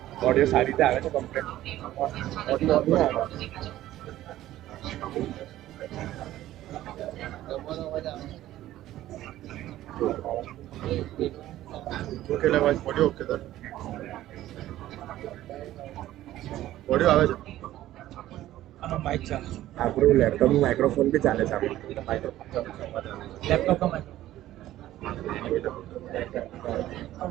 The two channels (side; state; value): left; quieter; 14.3 dB